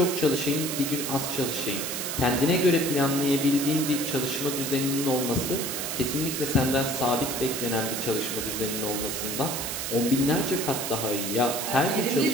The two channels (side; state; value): right; noise; hiss, 3 dB below the sound